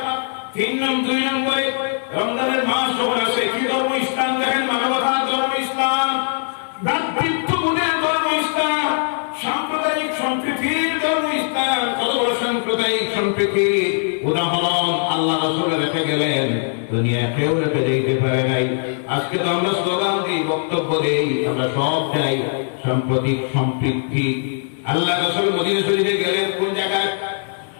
2 নম্বরে রমজানের মাস যখন আসে, কি ধর্ম? ইসলাম। দেখেন মানবতার ধর্ম ইসলাম, ভ্রাতৃত্ববোধের ধর্ম ইসলাম, সাম্প্রদায়িক সম্প্রীতির ধর্ম ইসলাম। কত বড় সাম্প্রদায়িক সম্প্রীতির উদাহরণ আল্লাহ রাসূল রেখে গেলেন, দুনিয়া কেউ রেখে যেতে পারে নাই। আজকে তো আমরা স্লোগান দিই, বক্তব্য দেই, আমরা সব চাই সাম্প্রতিক সম্প্রীতি। আল্লাহ রাসূল মদিনা শরীফে গেলেন, কোন জায়গায়?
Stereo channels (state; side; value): silent; right; digital silence